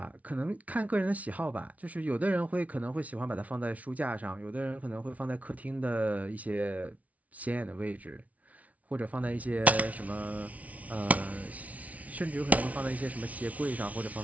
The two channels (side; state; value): left; late; 0.069 ms